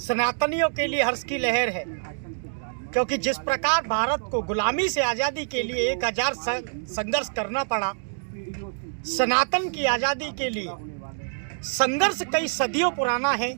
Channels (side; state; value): left; silent; digital silence